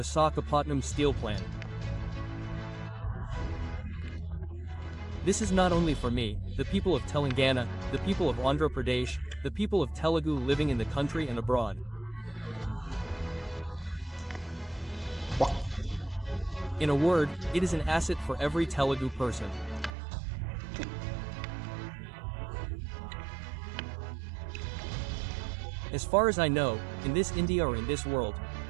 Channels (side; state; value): left; drops out; at 19.9 s